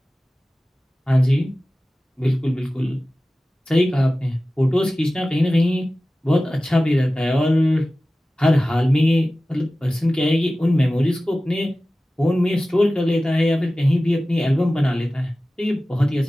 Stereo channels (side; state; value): both; normal; correlation 0.96